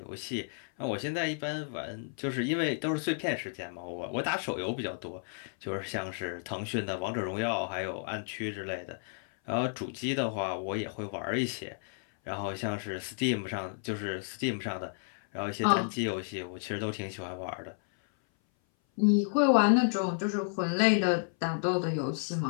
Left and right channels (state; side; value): silent; right; 56 dB below the other